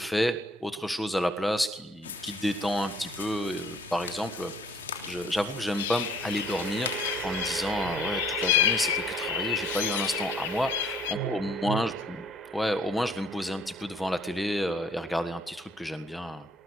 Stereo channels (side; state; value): both; normal; correlation 0.60